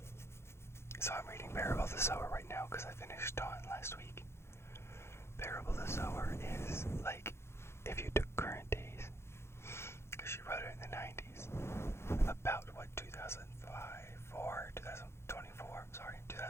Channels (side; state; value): right; late; 0.12 ms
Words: So I'm reading Parable of the Sower right now because I finished Dawn last week. Parable of the Sower is like if you took current days, because she wrote it in the 90s, about what